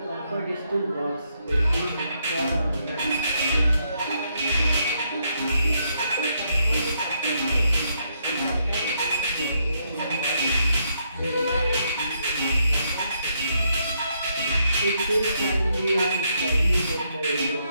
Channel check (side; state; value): both; inverted; correlation -0.76